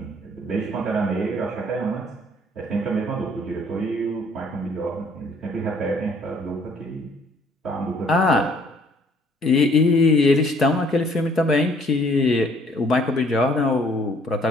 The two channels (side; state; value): both; normal; correlation 0.61